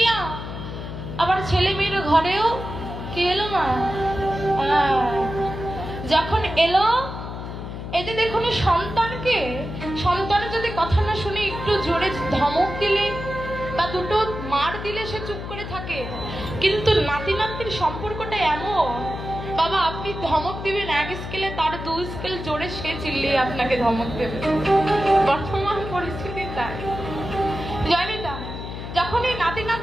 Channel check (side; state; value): left; noise; hum, 8 dB below the sound